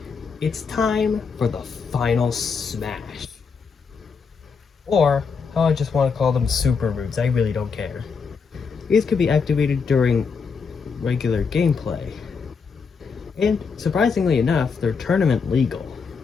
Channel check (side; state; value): right; quieter; 5.5 dB